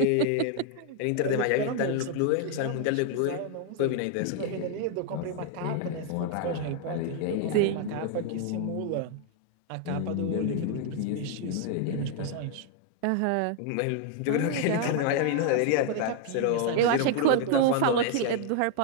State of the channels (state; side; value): different; both; correlation 0.00